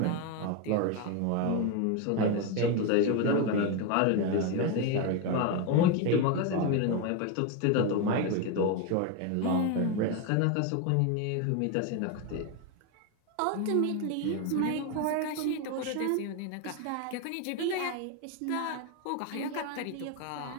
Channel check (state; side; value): different; both; correlation 0.02